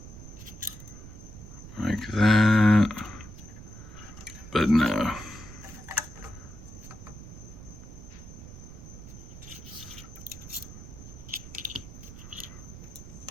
Like that. But no.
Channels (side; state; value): right; noise; rumble, 14 dB below the sound